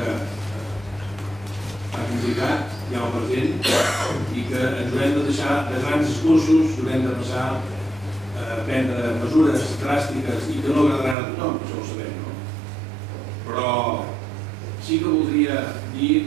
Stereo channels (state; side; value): drops out; left; at 11.2 s